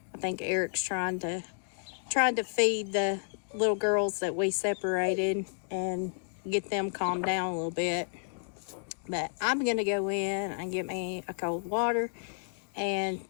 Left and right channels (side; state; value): right; silent; digital silence